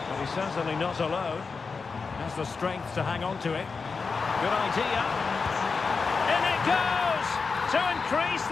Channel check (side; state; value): right; quieter; 4.8 dB